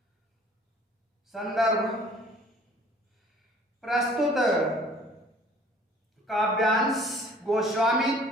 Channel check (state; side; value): normal; both; correlation 0.53